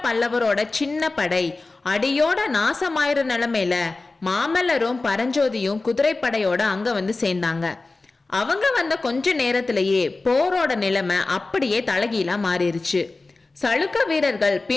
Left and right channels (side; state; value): right; quieter; 3.4 dB